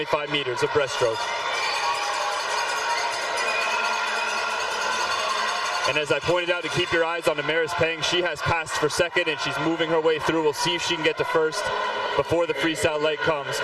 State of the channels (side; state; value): both; identical; correlation 1.00